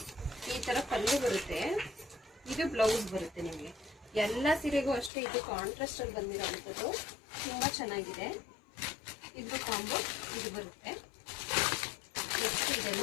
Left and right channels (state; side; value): drops out; right; at 5.1 s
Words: ಈ ಥರ ಪಲ್ಲು ಬರುತ್ತೆ, ಇದು ಬ್ಲೌಸ್ ಬರುತ್ತೆ. ನಿಮಗೆ ಎಲ್ಲ ಸೀರೆಗೂ ಅಷ್ಟೇ ಇದು ಕಾಂಟ್ರಾಸ್ಟ್ ಅಲ್ಲಿ ಬಂದಿರೋವಂಥದ್ದು. ತುಂಬ ಚೆನ್ನಾಗಿದೆ. ಇದು ಕಾಂಬೋ ಇದು ಬರುತ್ತೆ. ನೆಕ್ಸ್ಟ್